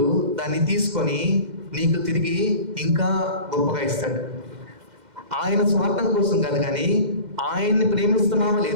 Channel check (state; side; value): late; left; 2.1 ms